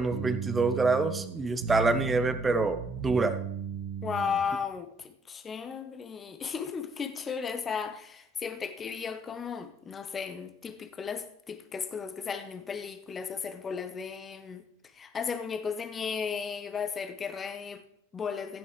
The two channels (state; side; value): normal; both; correlation 0.68